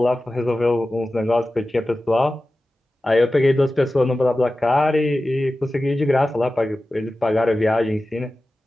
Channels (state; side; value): normal; both; correlation 0.95